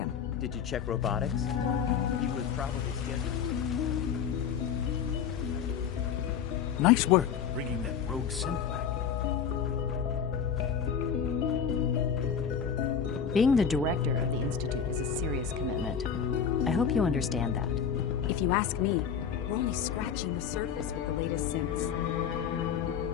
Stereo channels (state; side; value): quieter; right; 7.3 dB